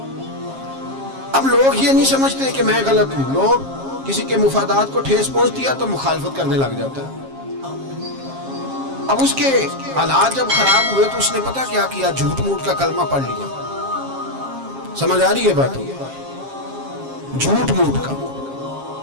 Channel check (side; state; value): left; late; 7.4 ms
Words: اب لوگ یہ نہیں سمجھتے کہ میں غلط ہوں، لوگ کسی کے مفادات کو ٹھیس پہنچ دیا تو مخالفت کرنے لگ جاتا ہے۔ اب اس کے حالات جب خراب ہوئے تو اس نے پتہ کیا کیا، جھوٹ موٹ کا کلمہ پڑھ لیا۔ سمجھ آ رہی ہے بات؟ جھوٹ موٹ کا،